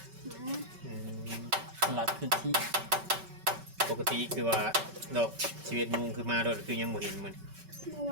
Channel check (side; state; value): left; late; 5.2 ms